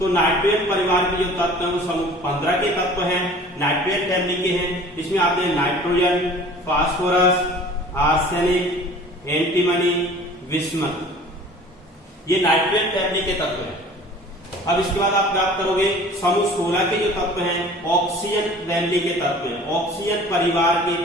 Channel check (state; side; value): normal; both; correlation 0.46